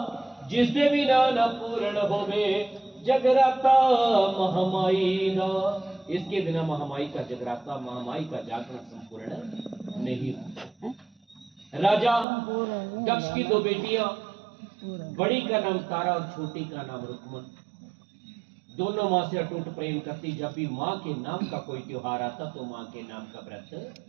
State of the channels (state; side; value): drops out; left; at 12.2 s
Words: जिसदे बिना न पूर्ण होवे जगराता महामाई दा। इसके बिना महामाई का जगराता, महामाई का जागरण संपूर्ण नहीं होता। राजा दक्ष की दो बेटियां, बड़ी का नाम तारा और छोटी का नाम रुक्मन, दोनों मां से अटूट प्रेम करती। जब भी मां के नाम का कोई त्योहार आता तो मां के नाम का व्रत